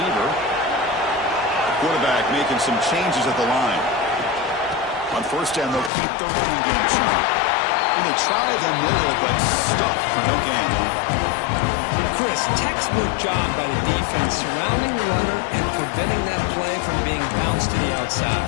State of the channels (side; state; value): right; drops out; at 5.9 s